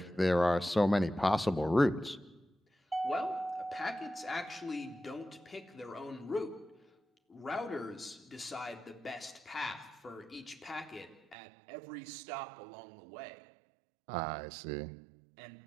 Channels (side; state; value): left; drops out; at 11.4 s